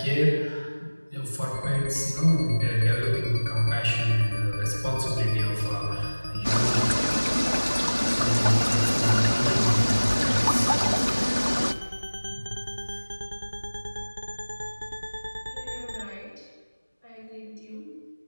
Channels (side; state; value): both; inverted; correlation -1.00